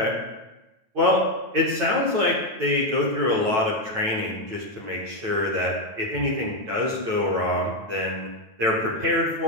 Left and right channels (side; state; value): left; late; 9.1 ms